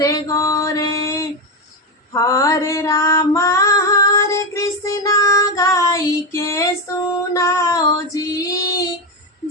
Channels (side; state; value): both; normal; correlation 0.11